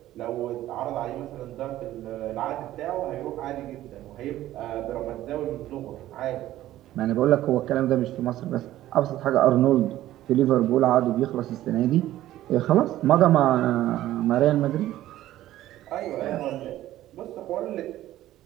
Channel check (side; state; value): left; quieter; 14.1 dB